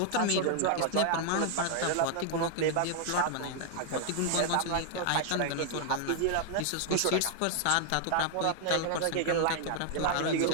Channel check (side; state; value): both; different; correlation 0.00